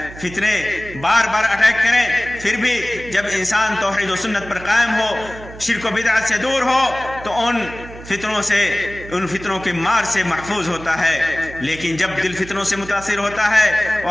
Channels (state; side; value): noise; right; hum, 15 dB below the sound